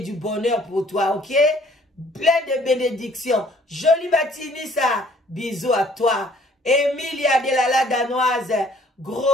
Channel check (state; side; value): normal; both; correlation 0.58